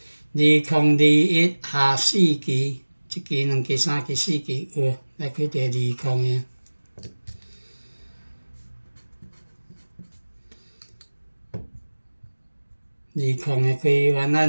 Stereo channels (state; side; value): inverted; both; correlation -1.00